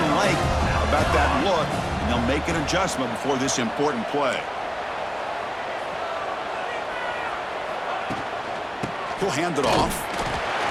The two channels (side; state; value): both; identical; correlation 1.00